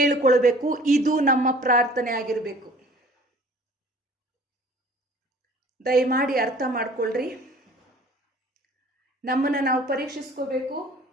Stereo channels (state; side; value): normal; both; correlation 0.50